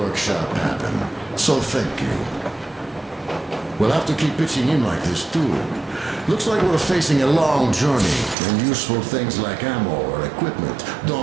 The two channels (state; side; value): drops out; left; at 8.3 s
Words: happen. So thank you. We'll have to keep pitching in like this too. Looks like we're facing a long journey, and useful things like ammo or equipment